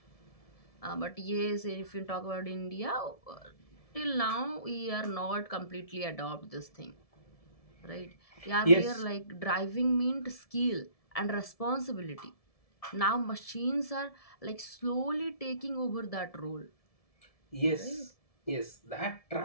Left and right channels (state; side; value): late; right; 1.7 ms